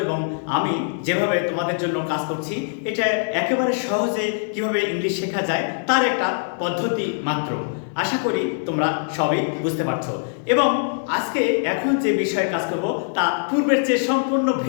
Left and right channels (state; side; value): silent; right; 58 dB below the other